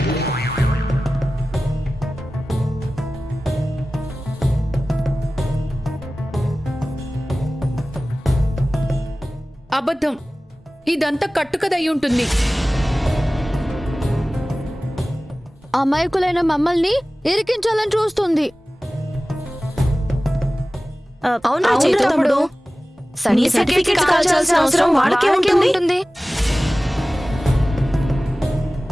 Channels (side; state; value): both; normal; correlation 0.97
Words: అబద్ధం. ఇదంతా కట్టుకదయ్యి ఉంటుంది. అమాయకులైన మమ్మల్ని ఇరికించాలని చూస్తుంది. అవునా చైతు తమ్ముడు? నీ సర్టిఫికెట్ కాల్చాల్సిన అవసరం వాళ్ళకే ఉంటుంది.